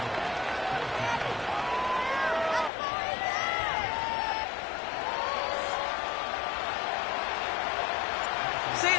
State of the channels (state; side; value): drops out; right; at 2.7 s